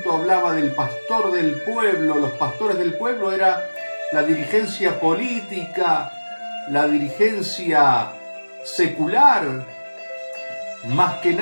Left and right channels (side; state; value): both; inverted; correlation -1.00